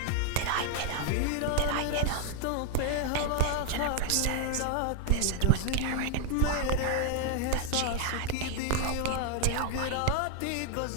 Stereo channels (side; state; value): both; different; correlation 0.01